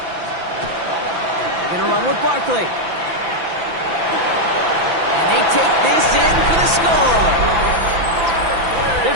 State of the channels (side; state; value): left; late; 5.9 ms